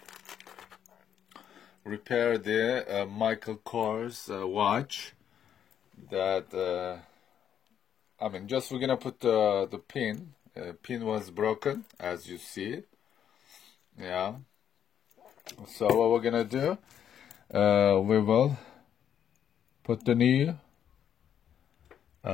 repair the Michael Kors watch that just we're gonna put the pin. Pin was broken, as you see. Yeah. So what we're gonna do, we will put the new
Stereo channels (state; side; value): quieter; right; 9.2 dB